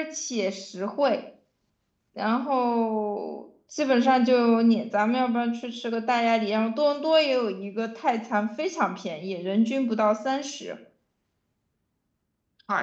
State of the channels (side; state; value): both; identical; correlation 1.00